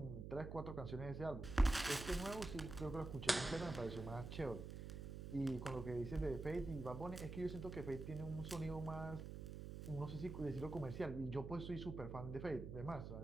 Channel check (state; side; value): noise; right; hum, 7 dB below the sound